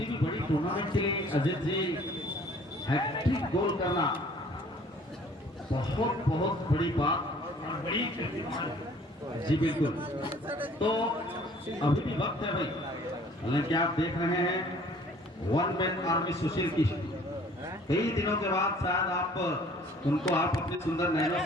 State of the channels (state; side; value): normal; both; correlation 0.54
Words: भी बड़ी टूर्नामेंट के लिए अजित जी हैट्रिक गोल करना बहुत बहुत बड़ी बात और बड़ी जी बिल्कुल। तो अभी भी वक्त है भाई, हालांकि आप देख रहे हैं वन मैन आर्मी सुशील की कई दिनों के बाद शायद आप उनको आप अपनी सुंदर नैनों